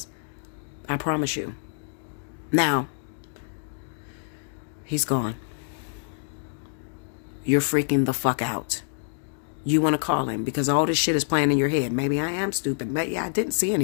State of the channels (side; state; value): right; silent; digital silence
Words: I promise you. Now, he's gone. You're freaking the fuck out. You want to call him because all this shit is playing in your head. Maybe I am stupid. Maybe I didn't see